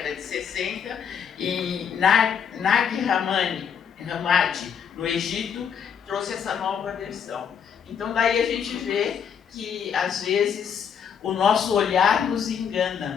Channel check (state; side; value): quieter; right; 7.6 dB